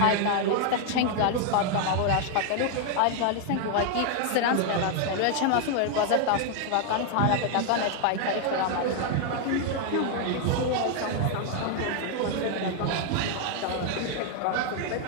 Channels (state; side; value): different; both; correlation 0.00